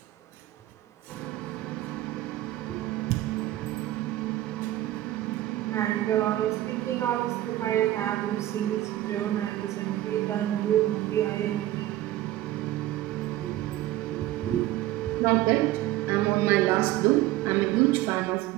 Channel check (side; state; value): left; quieter; 15.0 dB